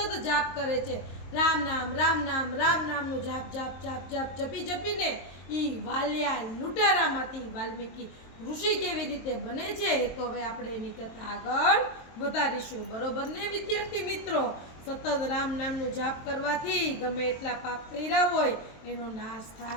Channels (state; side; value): late; right; 23 ms